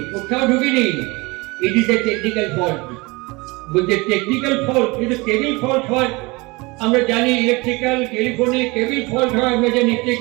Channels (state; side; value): quieter; left; 24.9 dB